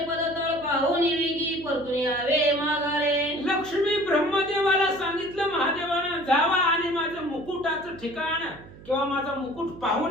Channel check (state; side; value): noise; right; hum, 19 dB below the sound